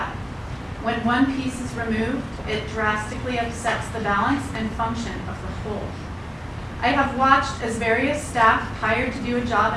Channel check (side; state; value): both; identical; correlation 1.00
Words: when one piece is removed, it drastically upsets the balance and function of the whole. I have watched as various staff hired to do a